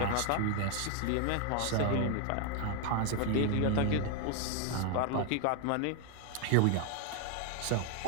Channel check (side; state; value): both; different; correlation 0.01